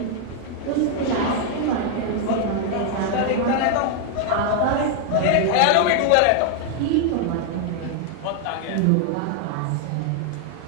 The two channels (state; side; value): different; both; correlation 0.00